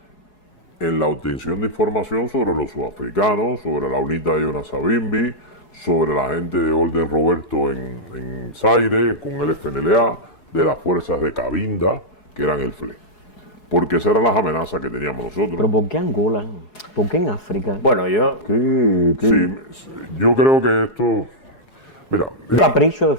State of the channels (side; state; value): right; late; 4.7 ms